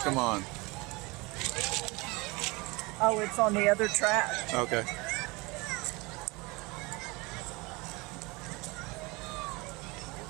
come on. Oh, it's on the other track. Okay.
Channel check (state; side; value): quieter; left; 25.2 dB